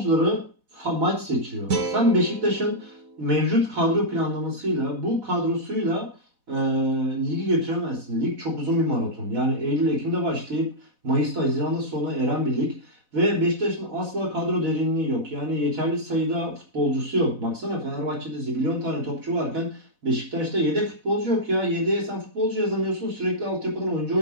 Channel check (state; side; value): late; left; 4.1 ms